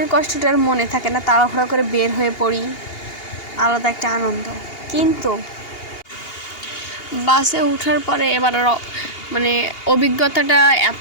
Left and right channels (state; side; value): late; right; 2.8 ms